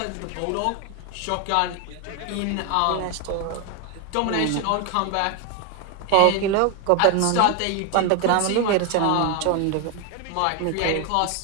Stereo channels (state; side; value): different; both; correlation 0.01